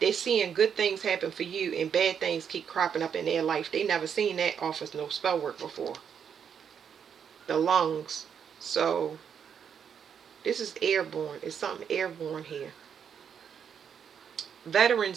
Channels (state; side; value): quieter; left; 7.6 dB